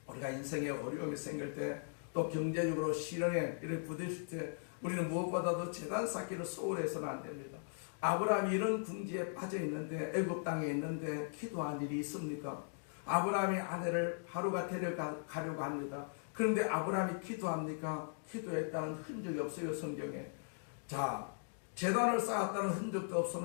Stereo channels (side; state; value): right; silent; digital silence